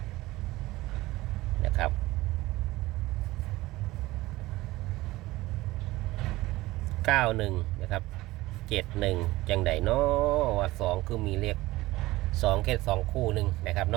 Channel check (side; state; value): left; quieter; 18.7 dB